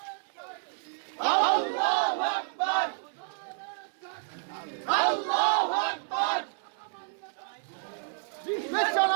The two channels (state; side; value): silent; left; digital silence